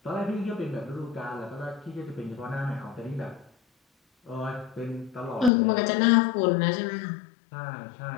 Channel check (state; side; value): drops out; right; at 5.5 s